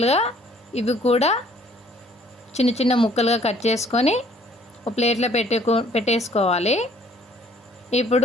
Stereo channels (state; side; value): normal; both; correlation 0.59